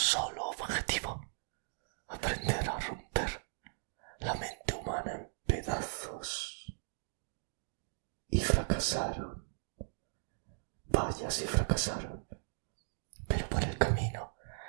objetivo: aprender a romper la mente humana en pedazos. Y fracasaron. Vaya si fracasaron. Pero por el camino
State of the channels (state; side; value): silent; left; digital silence